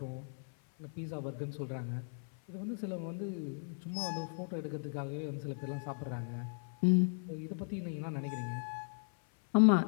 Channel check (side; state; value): right; silent; 53 dB below the other